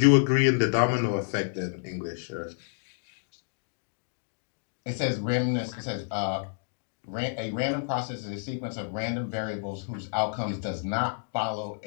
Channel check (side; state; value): right; silent; digital silence